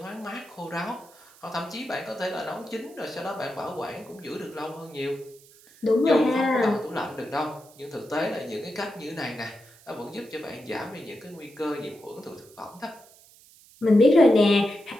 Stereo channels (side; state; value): right; noise; hiss, 25 dB below the sound